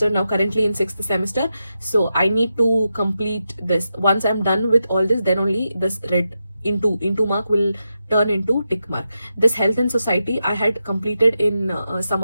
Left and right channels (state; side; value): inverted; both; correlation -0.88